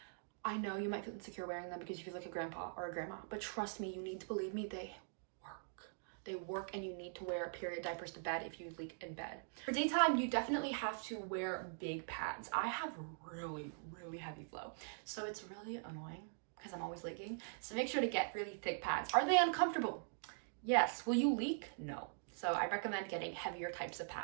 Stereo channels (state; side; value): silent; left; digital silence